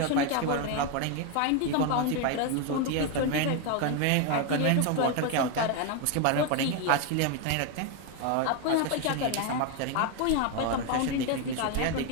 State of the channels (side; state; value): both; different; correlation 0.01